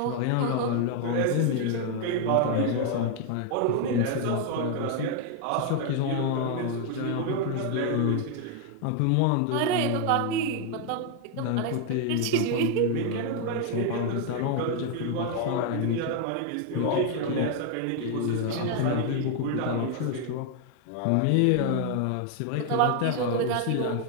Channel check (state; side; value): different; both; correlation 0.00